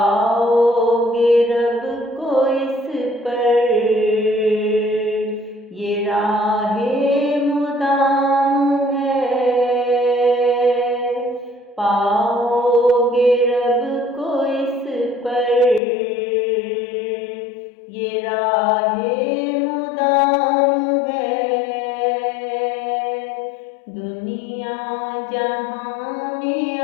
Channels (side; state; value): right; drops out; at 15.8 s